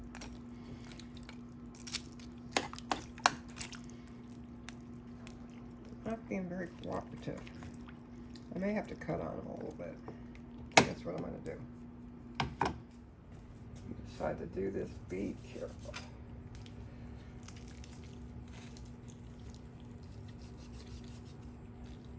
Not being very cooperative. I may have to cut on them a little bit. That's what I'm going to do. Decide to do this, be careful.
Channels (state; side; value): identical; both; correlation 1.00